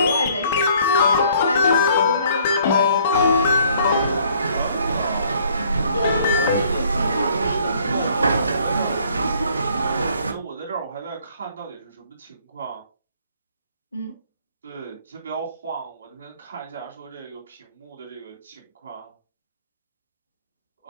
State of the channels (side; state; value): both; inverted; correlation -0.60